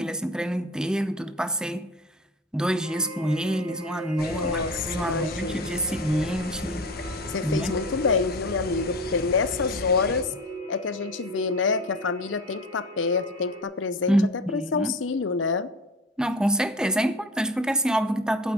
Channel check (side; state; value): both; normal; correlation 0.33